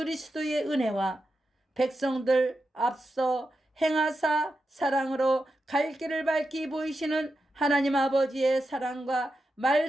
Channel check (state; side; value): normal; both; correlation 0.88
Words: 은혜와 백성들 앞서 행하사 사랑으로 갈 길을 밝히 보이시는 하나님 아버지의 사랑과